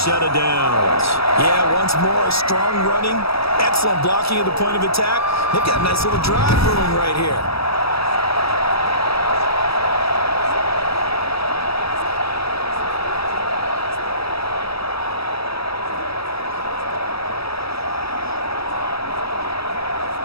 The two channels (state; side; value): late; right; 0.77 ms